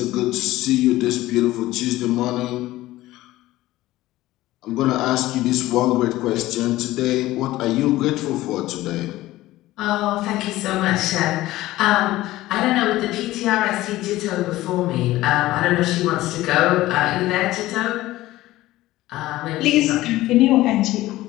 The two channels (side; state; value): right; quieter; 16.7 dB